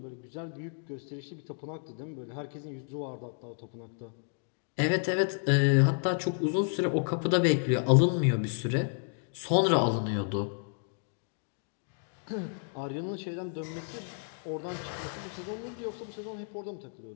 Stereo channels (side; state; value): right; silent; 57 dB below the other